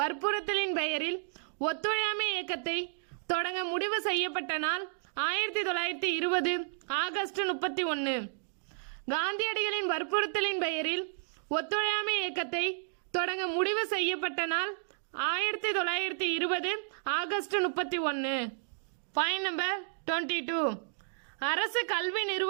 பெயரில் ஒத்துழையாமை இயக்கத்தை தொடங்க முடிவு செய்யப்பட்ட நாள் 1920 ஆகஸ்ட் 31. காந்தியடிகளின் வற்புறுத்தலின் பெயரில் ஒத்துழையாமை இயக்கத்தை தொடங்க முடிவு செய்யப்பட்ட நாள் 1920 ஆகஸ்ட் 31. Point number 22. அரசு கல்வி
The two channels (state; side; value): silent; left; digital silence